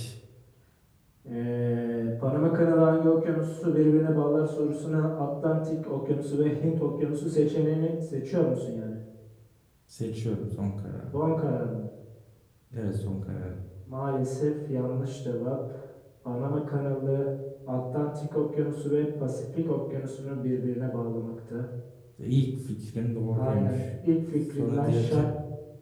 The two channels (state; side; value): identical; both; correlation 1.00